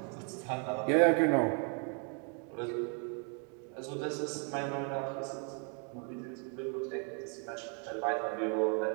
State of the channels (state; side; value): quieter; left; 39.6 dB